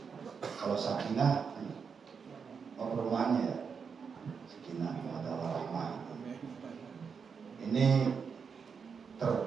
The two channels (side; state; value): left; quieter; 6.0 dB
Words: Kalau Sakinah perumahannya ya, Sakinah adalah rahmah. Ini